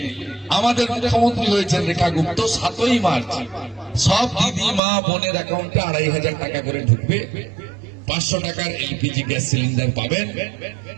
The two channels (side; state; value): left; drops out; at 4.8 s